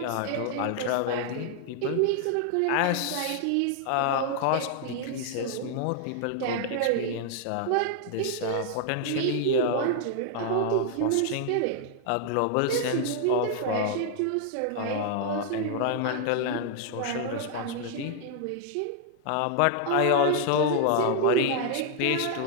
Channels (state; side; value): different; both; correlation 0.00